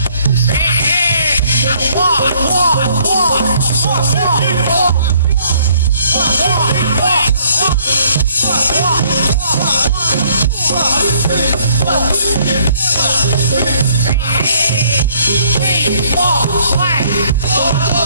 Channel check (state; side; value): inverted; both; correlation -0.63